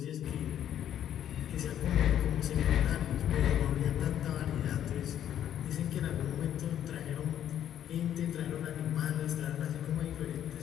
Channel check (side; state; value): right; quieter; 10.5 dB